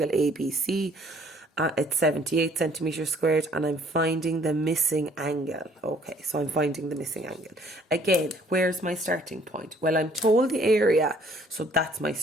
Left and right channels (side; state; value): both; normal; correlation 0.60